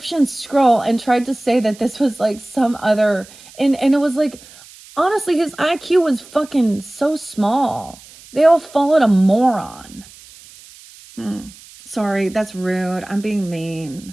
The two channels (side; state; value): right; noise; hiss, 22 dB below the sound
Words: scroll and tried to say that this was like some other, and it was like, Honestly, his IQ was fucking so small. They all followed a moron. Sorry, that's rude. I'm being mean.